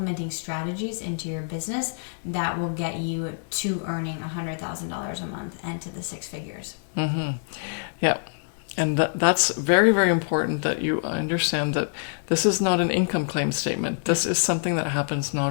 strategies into your business that will get you to earning $100,000 a month and to the 6 figures. Mm-hmm. Yeah. And that's very, very important that you understand that this is not an income claim statement. This is something that happens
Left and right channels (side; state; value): right; silent; digital silence